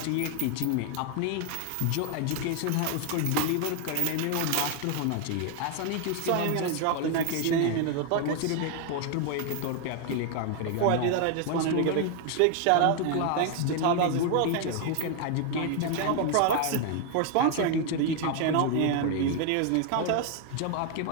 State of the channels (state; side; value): different; both; correlation 0.01